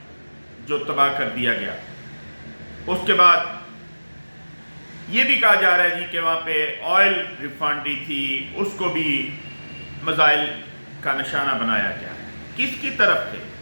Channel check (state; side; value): inverted; both; correlation -1.00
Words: جو تباہ کر دیا گیا۔ اس کے بعد یہ بھی کہا جا رہا ہے کہ وہاں پہ آئل ریفائنری تھی، اس کو بھی میزائل کا نشانہ بنایا گیا۔ کس کی طرف سے؟